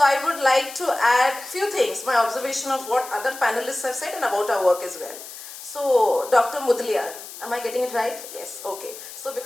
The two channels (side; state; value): left; noise; hiss, 13 dB below the sound